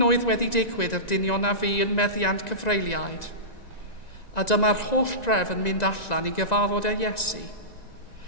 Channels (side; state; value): right; late; 1.9 ms